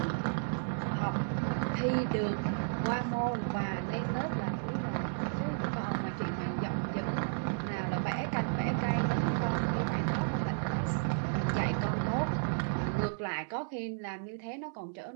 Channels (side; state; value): left; silent; 56 dB below the other